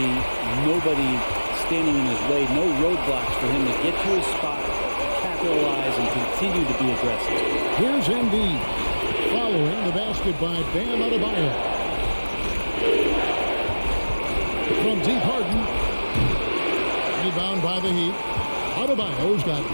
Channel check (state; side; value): inverted; both; correlation -1.00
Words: nobody standing in his way. No roadblocks for him to get to his spot, capitalize, and continue to be aggressive. Here's Embiid. Following the basket by Bam Adebayo. From deep, Harden. Rebound by the Heat. Adebayo's got